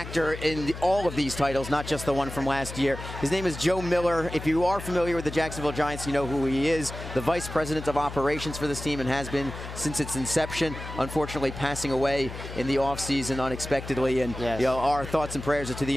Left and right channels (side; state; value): left; noise; hum, 10 dB below the sound